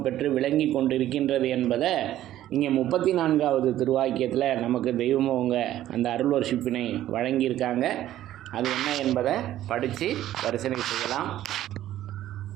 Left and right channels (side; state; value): left; quieter; 13.1 dB